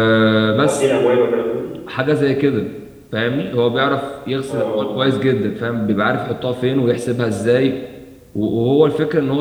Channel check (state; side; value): identical; both; correlation 1.00